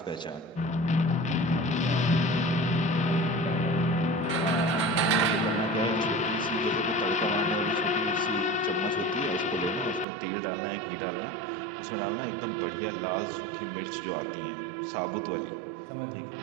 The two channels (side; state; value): left; drops out; at 10.1 s